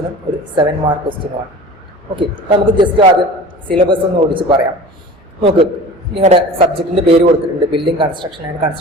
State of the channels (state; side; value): normal; both; correlation 0.39